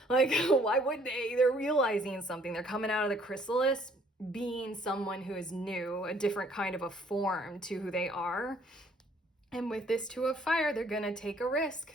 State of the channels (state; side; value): normal; both; correlation 0.62